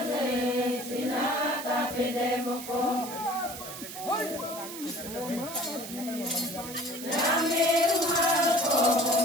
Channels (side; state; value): right; noise; hiss, 11 dB below the sound